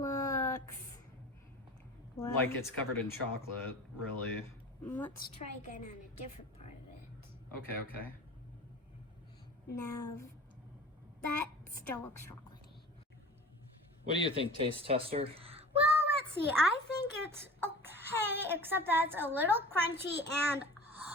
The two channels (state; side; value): normal; both; correlation 0.40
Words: well, Like it's covered in chocolate, really. let's try again on a different part of it. Okay. Now, that still looks chocolatey. What do you think, taste tester? Well, let's see. I think it's okay, except that it's a little crunchy and